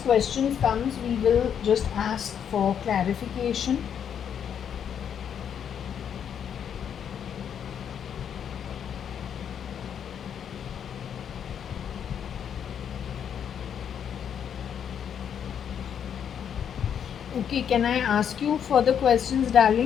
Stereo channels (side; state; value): right; quieter; 8.4 dB